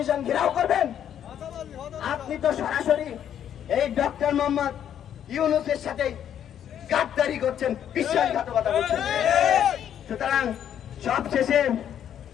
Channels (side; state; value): right; quieter; 9.7 dB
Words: ঘেরাও করবেন? আপনি তো সরাসরি এই ডক্টর মোহাম্মদ ইউনূসের সাথে গাদ্দারি করছেন, বিশ্বাসঘাতকতা করছেন। সুতরাং সবশেষে